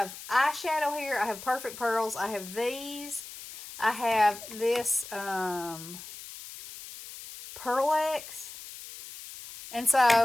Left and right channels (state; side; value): noise; left; hiss, 13 dB below the sound